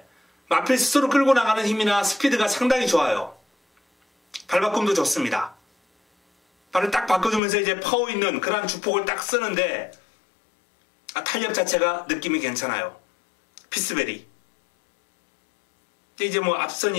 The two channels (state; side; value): drops out; right; at 7.4 s